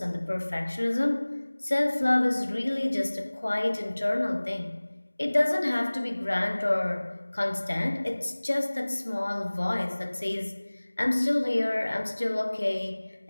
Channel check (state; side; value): inverted; both; correlation -1.00